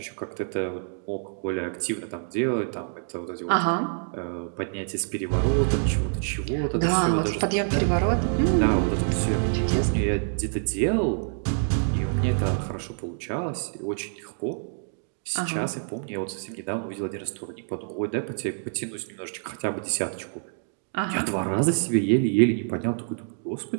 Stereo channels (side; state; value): left; silent; 59 dB below the other